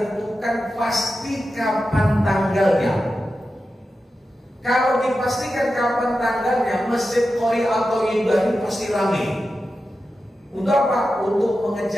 pasti kapan tanggalnya. Kalau dipastikan kapan tanggalnya, Masjid Qori atau Ibrahim pasti ramai. Untuk apa? Untuk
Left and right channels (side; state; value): both; normal; correlation 0.91